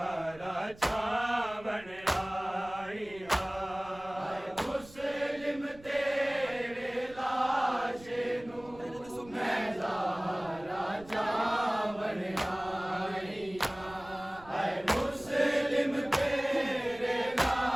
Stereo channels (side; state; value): right; noise; rumble, 21 dB below the sound